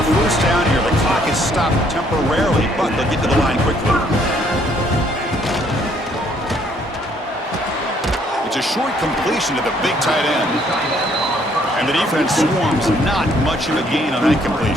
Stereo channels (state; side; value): normal; both; correlation 0.65